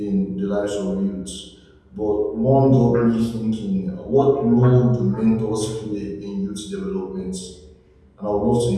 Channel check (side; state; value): both; identical; correlation 1.00